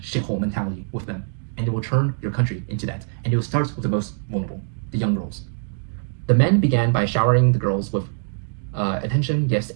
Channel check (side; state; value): left; silent; digital silence